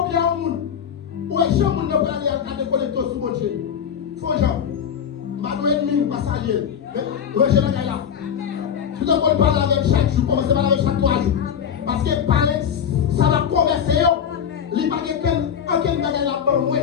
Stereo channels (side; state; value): right; quieter; 8.1 dB